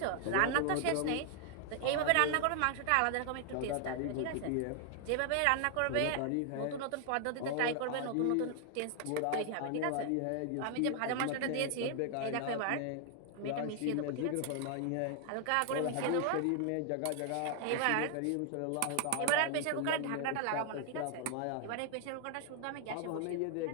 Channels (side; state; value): both; different; correlation 0.00